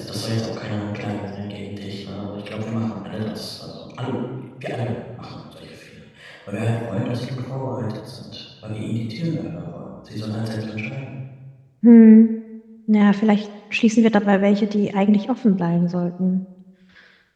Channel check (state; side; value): identical; both; correlation 1.00